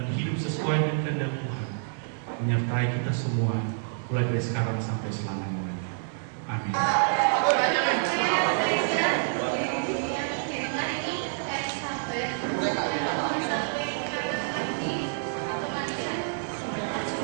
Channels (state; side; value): silent; left; 57 dB below the other